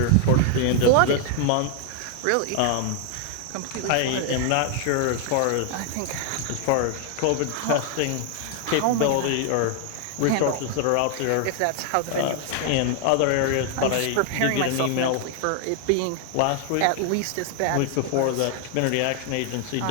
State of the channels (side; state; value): both; different; correlation 0.00